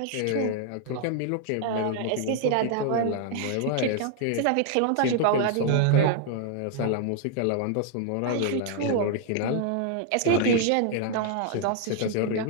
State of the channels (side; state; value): both; different; correlation 0.00